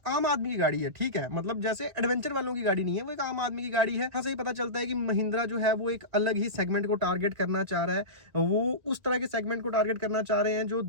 आम आदमी की गाड़ी है, ठीक है, मतलब जैसे एडवेंचर वालों की गाड़ी नहीं है, वो एक आम आदमी की गाड़ी है। हाँ, सही पता चलता है कि महिंद्रा जो है वो एक अलग ही सेगमेंट को टारगेट करना चाह रहा है। वो उस तरह के सेगमेंट को टारगेट करना चाह रहे हैं जो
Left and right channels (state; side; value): late; left; 2.1 ms